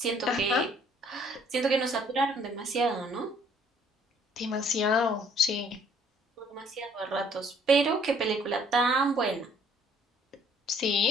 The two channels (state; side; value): normal; both; correlation 0.60